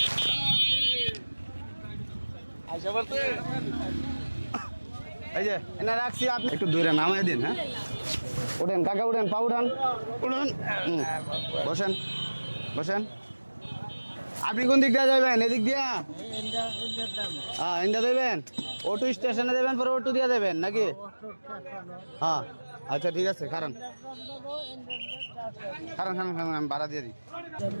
আইসা বলতে এই যে এনে রাখছি, আপনি একটু দূরে নামাই দিন। হ্যাঁ, উঠেন কাকা, উঠেন, পা উঠান, উঠুন, বসেন বসেন। আপনি কোন দিক দিয়ে যাবেন? এদিক দিয়া? হ্যাঁ, ইন্ডিয়া দেবেন, অটো স্টেশনে দেবেন, পরে অটো দিয়ে দেবেন নাকি? হ্যাঁ আচ্ছা ঠিক আছে, কারণ কারণ কারণ কারণ আমি ভাড়া দিয়ে দিই।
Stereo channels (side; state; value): both; inverted; correlation -1.00